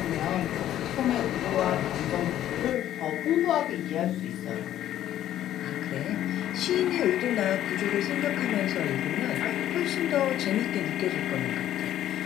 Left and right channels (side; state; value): right; quieter; 12.2 dB